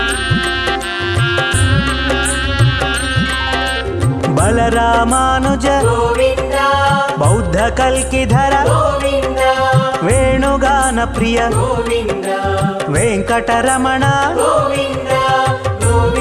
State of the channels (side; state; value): both; identical; correlation 1.00